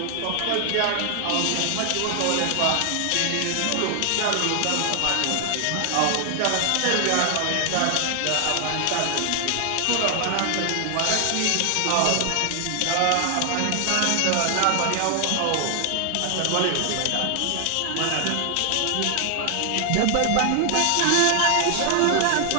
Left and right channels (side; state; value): both; different; correlation 0.00